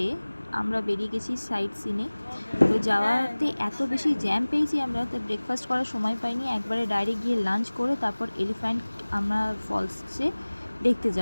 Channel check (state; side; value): inverted; both; correlation -1.00